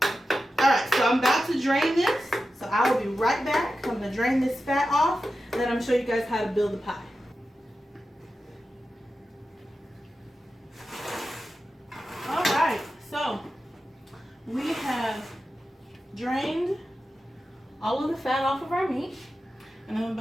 Alright, so I'm about to drain this. So I will be right back. I'm going to drain this fat off, and then I'm going to show you guys how to build the pie. Alright, so we have drained all of the fat off of our meat, and I'm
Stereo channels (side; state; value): both; normal; correlation 0.92